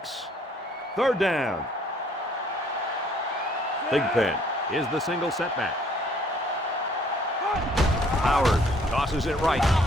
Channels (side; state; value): both; normal; correlation 0.61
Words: Third down. Thigpen is the single setback. Howard tosses it right.